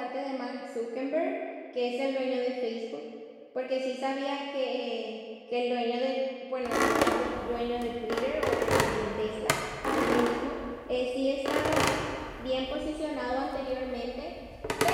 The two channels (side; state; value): both; identical; correlation 1.00